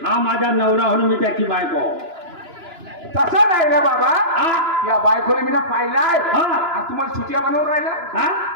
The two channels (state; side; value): late; left; 2.9 ms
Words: हा माझा नवरा म्हणून मी त्याची बायको. तसं नाही रे बाबा हा. या बायकोने मी ना पाहिलाय हा. आणि तुम्हाला सुट्या बनवून राहिला हा?